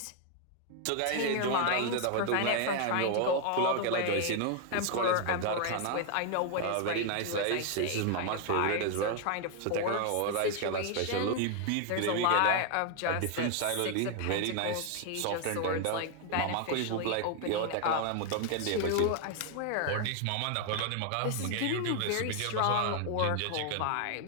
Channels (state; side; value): different; both; correlation 0.00